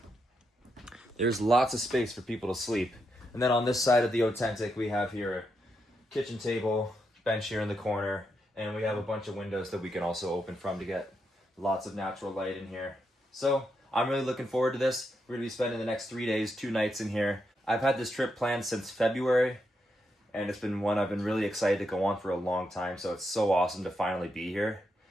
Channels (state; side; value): normal; both; correlation 0.82